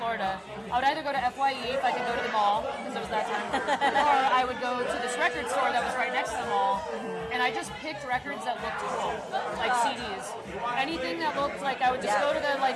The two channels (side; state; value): both; identical; correlation 1.00